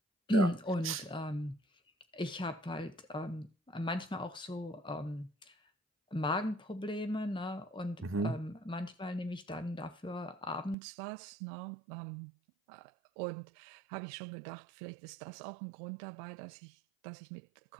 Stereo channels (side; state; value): left; drops out; at 10.8 s